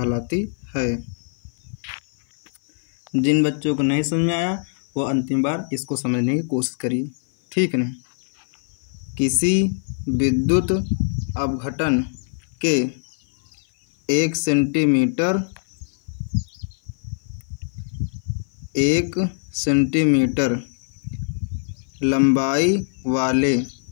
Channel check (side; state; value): right; silent; 56 dB below the other